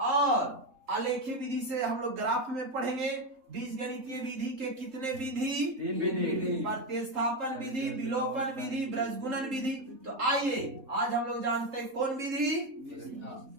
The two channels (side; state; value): left; late; 3.8 ms